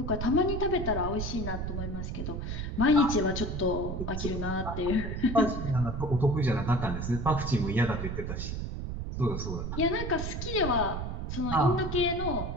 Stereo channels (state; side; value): noise; right; rumble, 4 dB below the sound